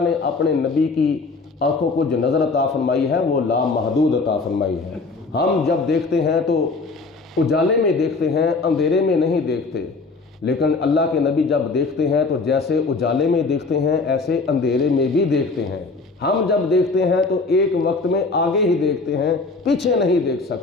نے اپنے نبی کی آنکھوں کو جو نظر عطا فرمائی ہے وہ لامحدود عطا فرمائی ہے۔ ہم جب دیکھتے ہیں تو اجالے میں دیکھتے ہیں، اندھیرے میں نہیں دیکھتے، لیکن اللہ کے نبی جب دیکھتے ہیں تو جیسے اجالے میں دیکھتے ہیں ایسے اندھیرے میں بھی دیکھتے ہیں۔ ہم جب دیکھتے ہیں تو ایک وقت میں آگے ہی دیکھتے ہیں، پیچھے نہیں دیکھ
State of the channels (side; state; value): right; quieter; 3.9 dB